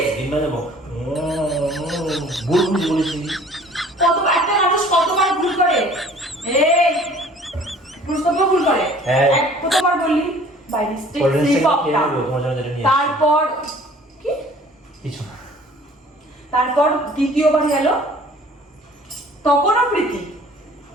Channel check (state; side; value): normal; both; correlation 0.51